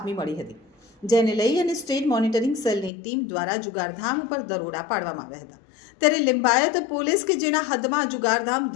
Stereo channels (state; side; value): drops out; right; at 2.9 s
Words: મળી હતી, જેને લઈ અને સ્ટેટ મોનિટરિંગ સેલની ટીમ દ્વારા જુગારધામ ઉપર દરોડા પાડવામાં આવ્યા હતા। ત્યારે લિંબાયત પોલીસ કે જેના હદમાં જુગારધામ